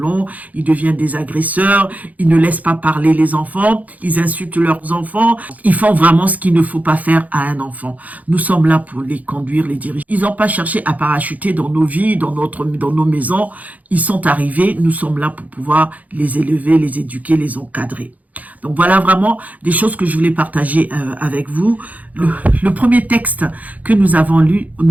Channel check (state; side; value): late; left; 0.076 ms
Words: ils deviennent des agresseurs, ils ne laissent pas parler les enfants, ils insultent leurs enfants, ils font vraiment ce qu'il ne faut pas faire à un enfant. Nous sommes là pour les conduire, les diriger. Ils n'ont pas cherché à parachuter dans nos vies, dans nos maisons. Ils sont arrivés, nous sommes là pour pouvoir les élever, les éduquer, les encadrer. Donc voilà vraiment des choses que je voulais partager avec vous. Le premier texte que nous avons lu